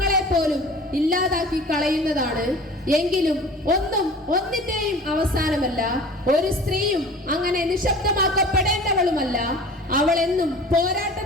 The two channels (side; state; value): both; normal; correlation 0.42